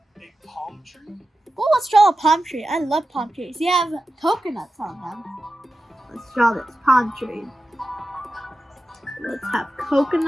a palm tree? Oh, let's draw a palm tree. I love palm trees. You have coconuts on them. Let's draw this palm tree. Let's have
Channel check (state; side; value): normal; both; correlation 0.92